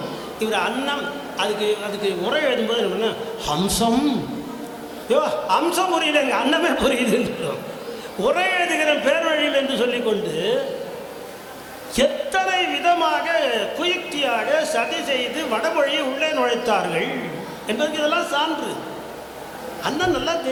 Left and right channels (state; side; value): identical; both; correlation 1.00